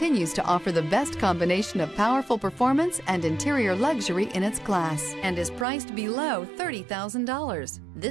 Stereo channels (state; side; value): drops out; left; at 5.7 s